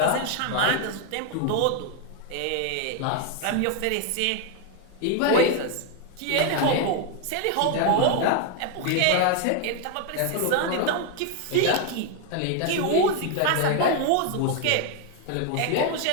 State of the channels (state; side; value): different; both; correlation 0.01